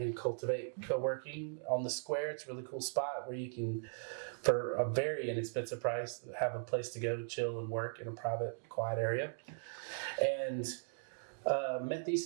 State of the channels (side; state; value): left; silent; digital silence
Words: Cultivate Co-working on the Square. It's a really cool spot where you can, for a very inexpensive price, have a place to go chill and work in a private, quiet area. And met